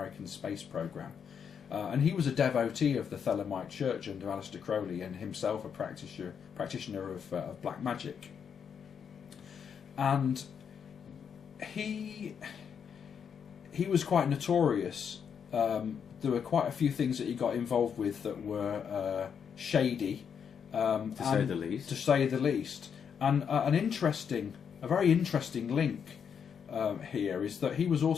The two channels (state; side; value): quieter; right; 7.3 dB